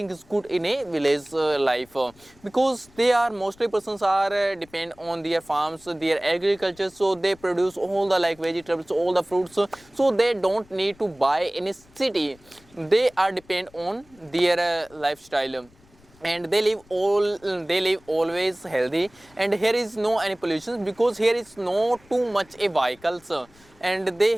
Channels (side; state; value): left; noise; rumble, 28 dB below the sound